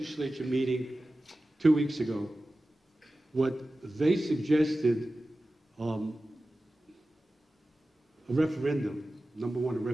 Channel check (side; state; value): both; normal; correlation 0.95